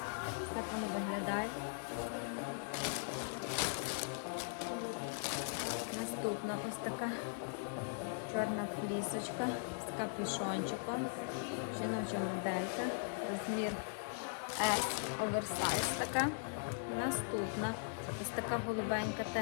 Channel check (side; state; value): right; silent; digital silence